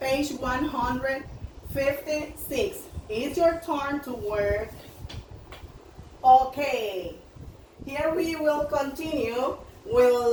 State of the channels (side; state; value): both; identical; correlation 1.00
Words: 156. It's your turn to work. Okay, here we will continue with